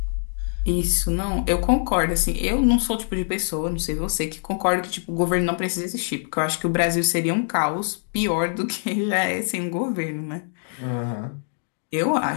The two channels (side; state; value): right; silent; digital silence